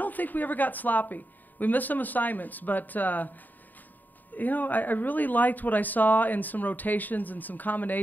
think we ever got sloppy. We missed some assignments, but, I really liked what I saw in some rotations and some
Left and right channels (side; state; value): right; late; 0.086 ms